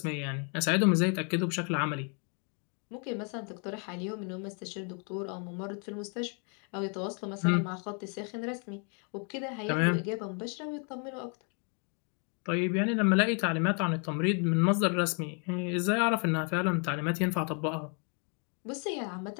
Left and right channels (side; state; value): right; quieter; 38.7 dB